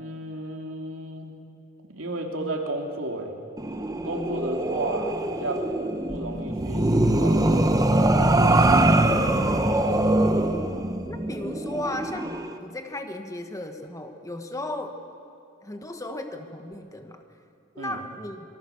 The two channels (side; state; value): both; normal; correlation 0.65